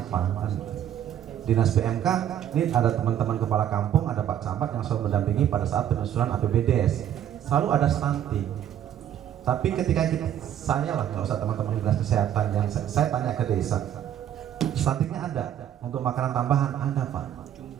Kan? Dinas PMK ini ada teman-teman kepala kampung, ada Pak Camat yang selalu mendampingi pada saat penyusunan APBDes. Selalu ada stunting. Tapi ketika saya lah, nggak usah teman-teman dinas kesehatan, yang saya tanya ke desa, stuntingnya ada, untuk makanan tambahan ada Pak.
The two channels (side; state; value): left; quieter; 10.5 dB